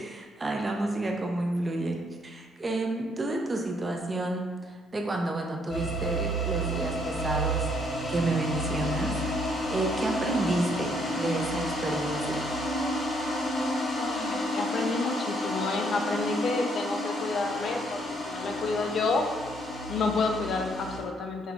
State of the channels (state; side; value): normal; both; correlation 0.69